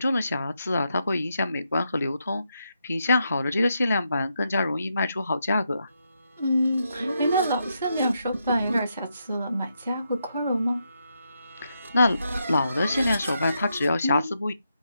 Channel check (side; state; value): both; inverted; correlation -0.82